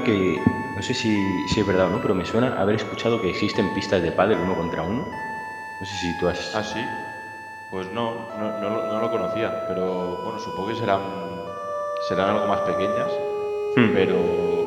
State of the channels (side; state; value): both; identical; correlation 1.00